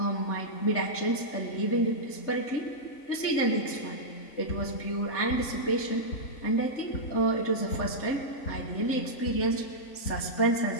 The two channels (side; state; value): right; late; 3.4 ms